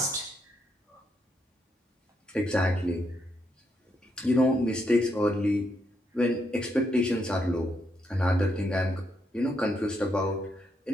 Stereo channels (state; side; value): normal; both; correlation 0.78